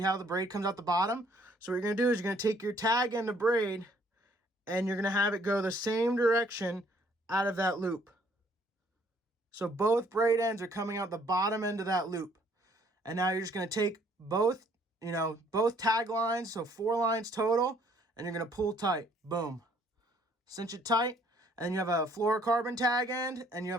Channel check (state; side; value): normal; both; correlation 0.63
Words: how the braid comes out the bottom? So what you're going to do is you're going to take your tag end of braid, and you're going to have it go the same direction out of that loop. So both braid ends are coming out the bottom end of that loop. And now you're just going to take both tag lines, so 4 lines total, and you're going to pull tight. Boom. Cinch it tight. And then you have a fluorocarbon tag end and you